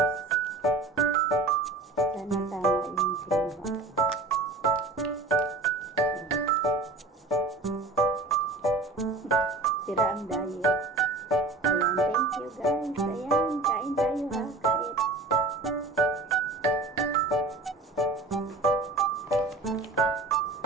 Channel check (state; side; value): quieter; left; 3.3 dB